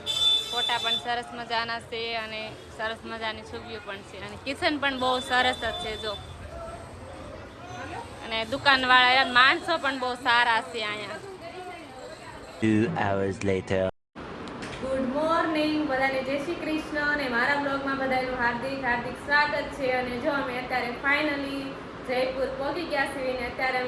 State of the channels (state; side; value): identical; both; correlation 1.00